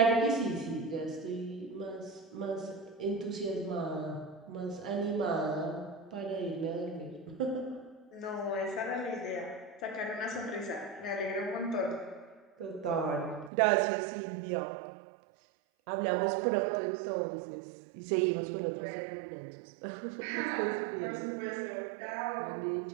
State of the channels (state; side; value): drops out; left; at 13.5 s